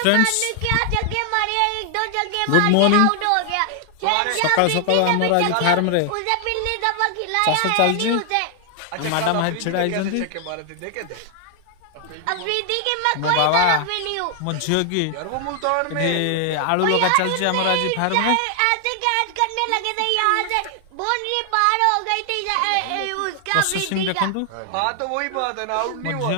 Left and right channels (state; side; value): different; both; correlation 0.00